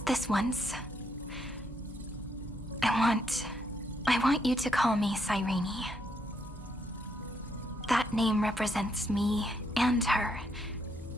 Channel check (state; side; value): normal; both; correlation 0.76